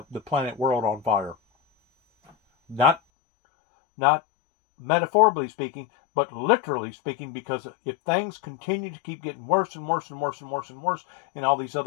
planet world on fire. Not metaphorically speaking, but literally speaking, because if things continue to keep getting worse and worse and worse and worse and worse in all these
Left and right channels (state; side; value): drops out; right; at 3.0 s